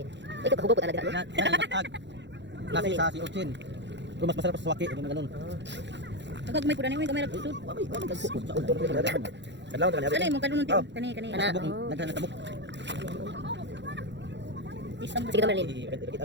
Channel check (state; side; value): late; left; 0.52 ms